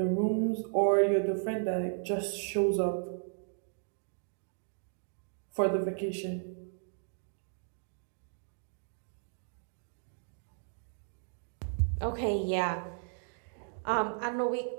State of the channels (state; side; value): silent; left; digital silence